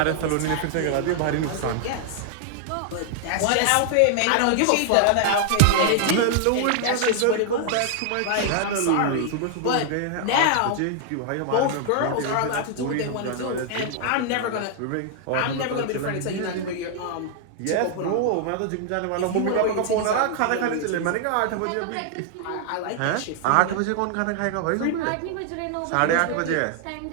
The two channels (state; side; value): different; both; correlation 0.00